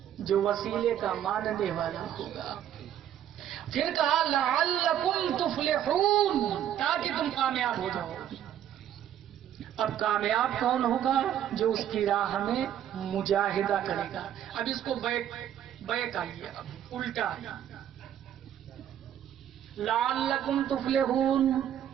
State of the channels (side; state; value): left; quieter; 10.6 dB